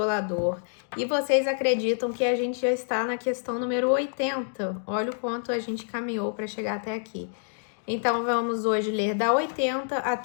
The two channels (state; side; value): silent; right; digital silence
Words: E vocês acreditam que a gente já está na questão número 80. Olha o quanto a gente caminhou para chegar até aqui. Então, vamos hoje ler da 80